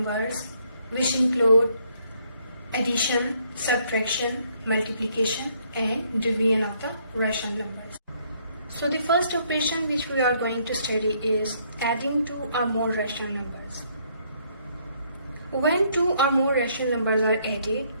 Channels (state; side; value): inverted; both; correlation -0.69